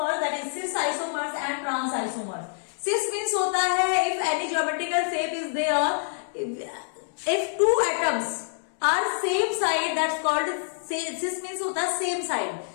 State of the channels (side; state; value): right; silent; 61 dB below the other